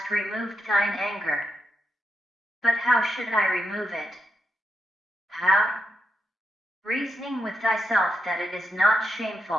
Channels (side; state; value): both; normal; correlation 0.84